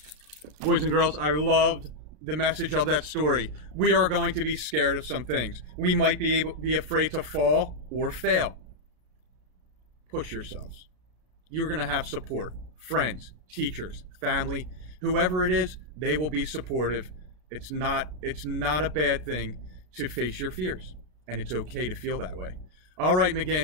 Boys and girls, I loved the message of that story. We are going to be scared of some things. We might be afraid to fall or fail. Push yourselves. You're going to have support. Friends, teachers, family, whoever it is, they will be supportive. It's not a bad thing to face your fears, and it's okay to feel that way. All right,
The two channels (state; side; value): late; left; 33 ms